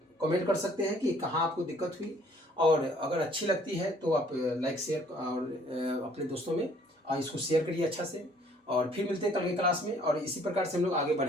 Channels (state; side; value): normal; both; correlation 0.59